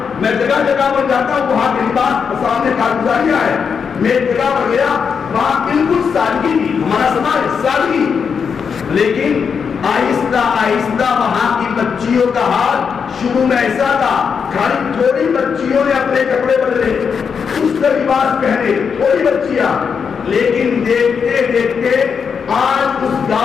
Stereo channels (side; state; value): right; quieter; 6.4 dB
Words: میں جگہ جگہ پر جاتا ہوں, وہاں کے لباس سامنے کارگزاریاں ہے. میں ایک جگہ پر گیا, وہاں بالکل سادگی تھی, ہمارا سماج سادگی, لیکن آہستہ آہستہ وہاں کی بچیوں کا حال شروع میں ایسا تھا, خالی تھوڑی بچیوں نے اپنے کپڑے بدلے, اس کا لباس پہنے, تھوڑی بچیاں, لیکن دیکھتے دیکھتے آج اس